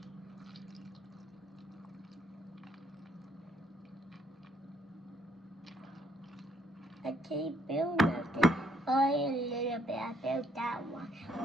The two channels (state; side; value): normal; both; correlation 0.69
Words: I can't feel nothing. Only a little bit. I felt that one.